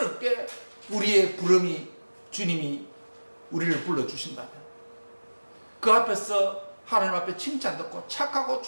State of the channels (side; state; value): both; inverted; correlation -1.00